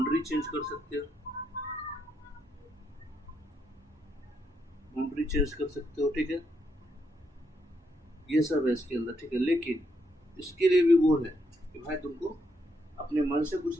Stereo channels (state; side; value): normal; both; correlation 0.78